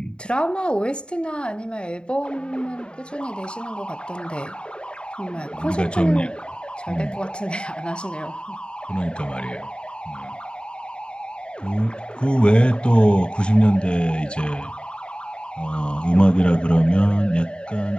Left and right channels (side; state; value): right; late; 0.052 ms